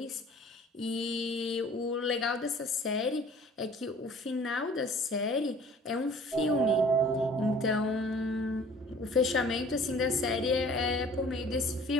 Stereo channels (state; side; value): normal; both; correlation 0.50